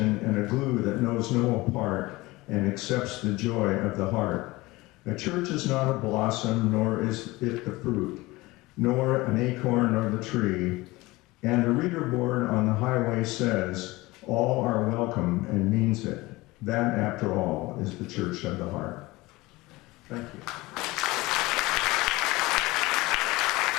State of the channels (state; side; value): quieter; right; 20.8 dB